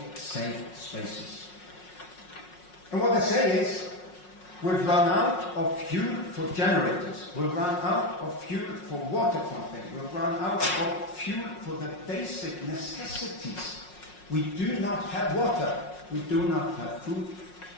safe spaces. And what they say is, we've run out of fuel for generators, we've run out of fuel for water pumping, we've run out of fuel for the basic necessities. We do not have water, we do not have food,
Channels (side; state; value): right; late; 5.5 ms